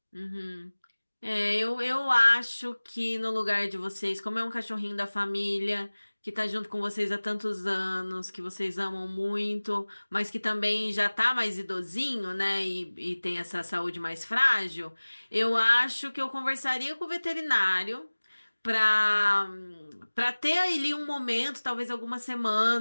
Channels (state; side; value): inverted; both; correlation -1.00